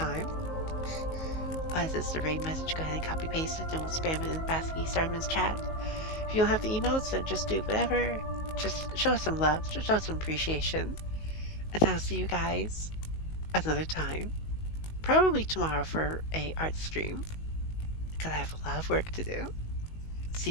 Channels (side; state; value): right; late; 19 ms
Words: As it's the raid message, go ahead and copy paste it, and we'll spam it in Basky Starman's chat. If you don't have the emotes, then just do whatever. Just show us some love, just show us some appreciation. And I'll see you guys another time. Probably tomorrow for a art stream, because I have a lot of work to do. See